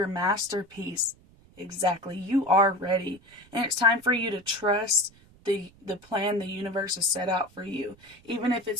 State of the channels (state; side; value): noise; right; rumble, 27 dB below the sound